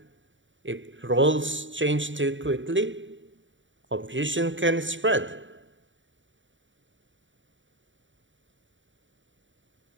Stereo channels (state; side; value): late; left; 0.55 ms